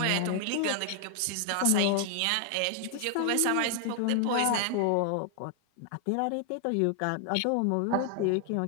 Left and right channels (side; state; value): both; different; correlation 0.00